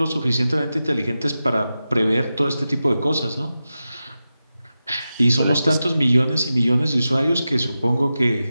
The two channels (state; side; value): inverted; both; correlation -0.92